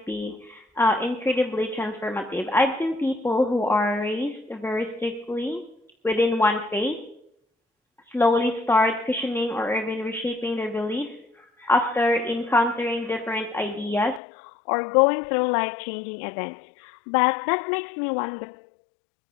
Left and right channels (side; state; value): right; drops out; at 14.2 s